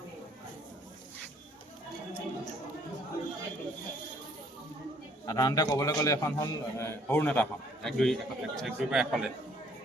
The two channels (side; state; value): both; normal; correlation 0.61